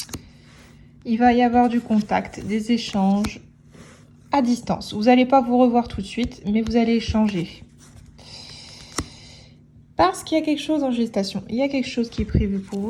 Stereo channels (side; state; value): both; identical; correlation 1.00